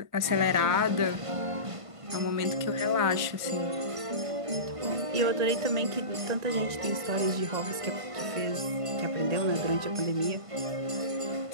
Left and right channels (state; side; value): late; left; 1.5 ms